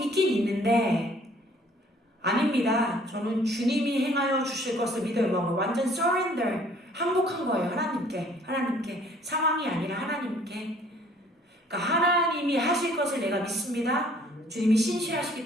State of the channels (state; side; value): normal; both; correlation 0.57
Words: 있는데 아닙니다. 저는 주님이 행하여 주실 것을 믿어요. 완전 surrender, 항복한 거예요. 하나님께 상황이 아니라 하나님께. 그러니까 하나님이 하실 것을 내가 믿습니다. 주님이 신실하시기